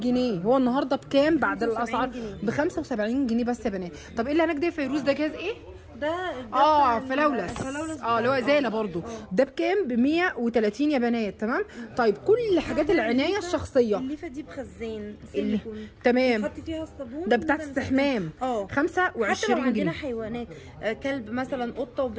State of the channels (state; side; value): identical; both; correlation 1.00